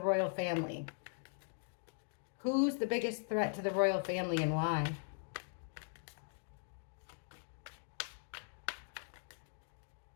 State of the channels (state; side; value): silent; right; digital silence